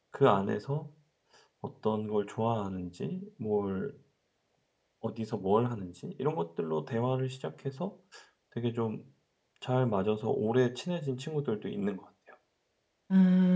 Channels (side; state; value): both; identical; correlation 1.00